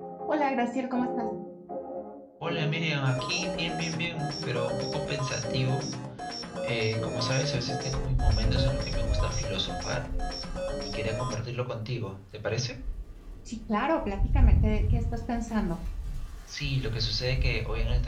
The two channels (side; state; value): both; identical; correlation 1.00